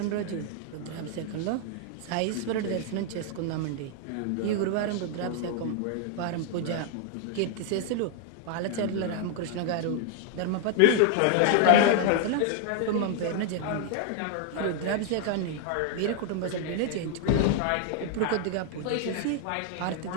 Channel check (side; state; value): both; different; correlation 0.00